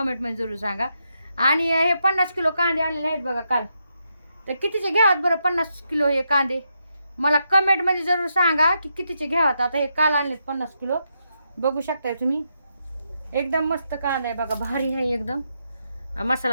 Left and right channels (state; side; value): inverted; both; correlation -0.82